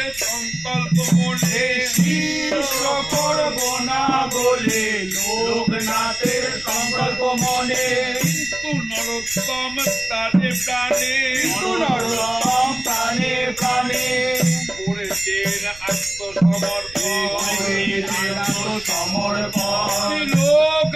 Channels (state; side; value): noise; right; rumble, 20 dB below the sound